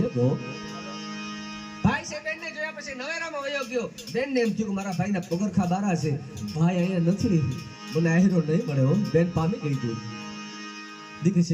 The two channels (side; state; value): both; identical; correlation 1.00